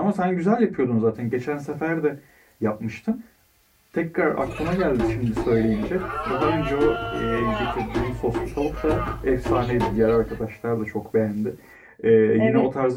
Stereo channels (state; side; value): identical; both; correlation 1.00